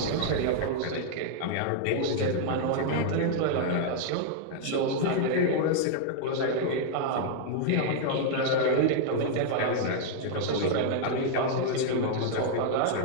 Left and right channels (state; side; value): different; both; correlation -0.01